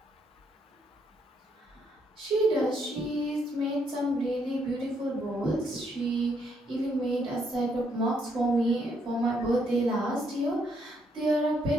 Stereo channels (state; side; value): normal; both; correlation 0.73